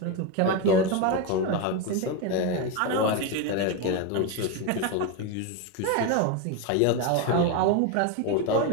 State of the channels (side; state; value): both; different; correlation 0.03